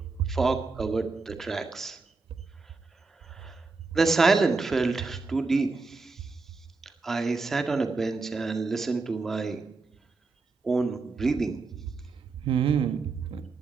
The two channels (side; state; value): left; quieter; 4.1 dB